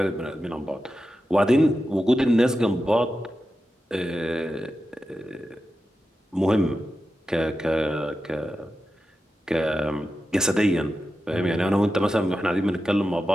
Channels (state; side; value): normal; both; correlation 0.91